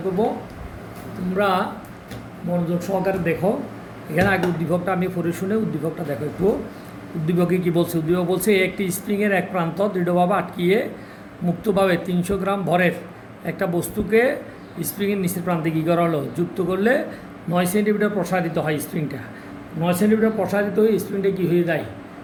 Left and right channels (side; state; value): both; identical; correlation 1.00